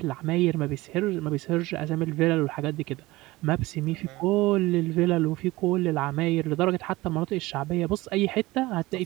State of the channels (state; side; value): quieter; left; 19.9 dB